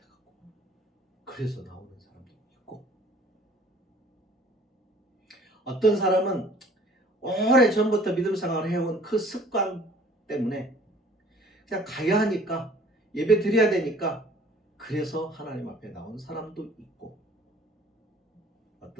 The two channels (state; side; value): normal; both; correlation 0.53